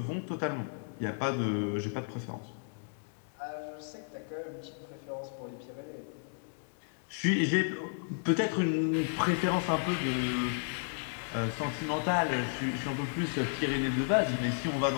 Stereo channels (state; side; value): silent; right; digital silence